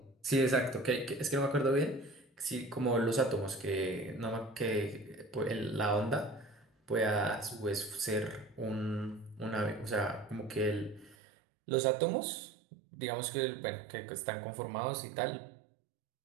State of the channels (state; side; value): drops out; left; at 11.2 s